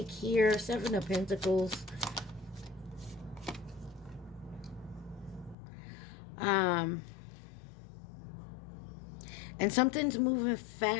here. Seven of Pentacles. And something's moving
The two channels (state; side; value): drops out; right; at 5.6 s